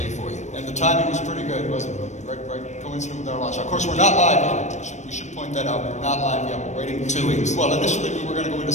for you. And the timing was pretty good, wasn't it? Right coincident with our launch. Of course, we're not live yet. We should point that out. We're not live yet. We're waiting 2 weeks. Well, initially we were going to go into New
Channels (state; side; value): late; right; 0.34 ms